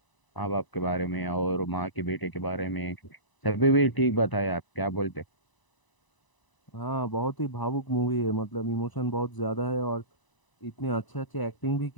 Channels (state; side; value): late; right; 1.0 ms